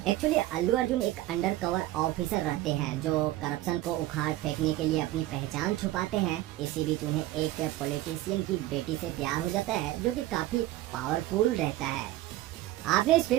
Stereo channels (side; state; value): left; quieter; 16.0 dB